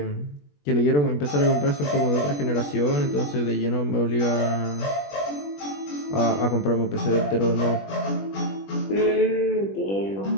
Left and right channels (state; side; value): late; right; 20 ms